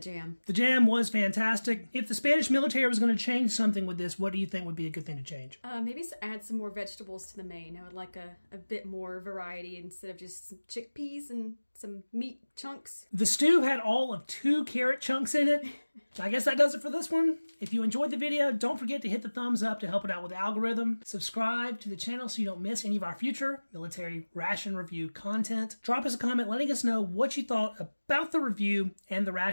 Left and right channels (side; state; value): both; inverted; correlation -1.00